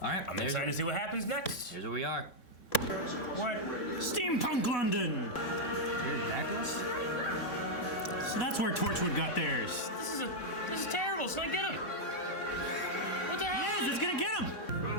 all right. I'm excited to see what happens next. Here's where we are. What? Steampunk London! So that's where Torchwood got theirs. This is terrible. So I get him. What the hell? Yes, it's gonna get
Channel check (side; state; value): right; late; 3.6 ms